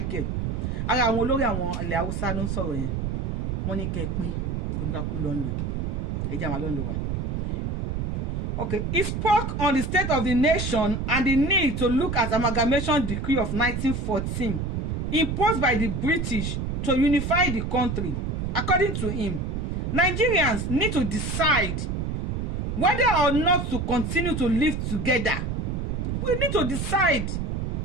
ara àwọn olórí àwọn ilẹ̀ Haúsá ló ń sọ̀rọ̀ yẹn wọ́n ní kẹ́ pín kò ní ká kú lọ́nlẹ̀ ẹ̀jẹ̀ àwọn lọ́nlẹ̀ wa. Okay, he spoke on the state of the nation and the need to look at amalgamation decree of 1914 imposed by the British to unify the country. According to him, Nigerians need to decide whether or not to continue to live together. We need to decide.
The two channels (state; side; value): noise; right; rumble, 2 dB below the sound